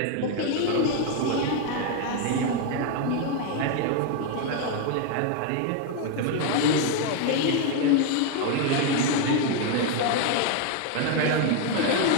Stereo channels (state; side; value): different; both; correlation 0.01